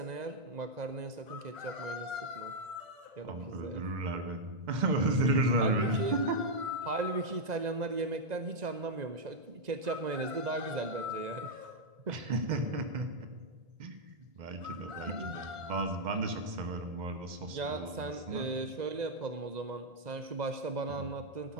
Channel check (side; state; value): left; late; 2.0 ms